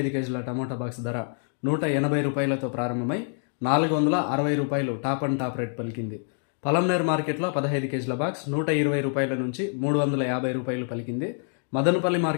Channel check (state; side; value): silent; right; 61 dB below the other